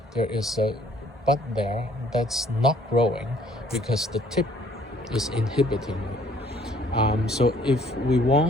There is a bud there that's not growing because the tip is inhibiting it. So if we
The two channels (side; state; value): both; normal; correlation 0.60